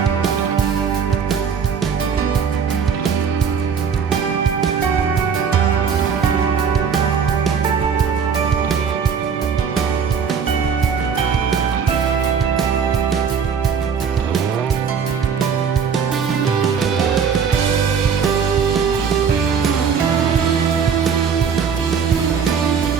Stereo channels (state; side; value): quieter; left; 6.7 dB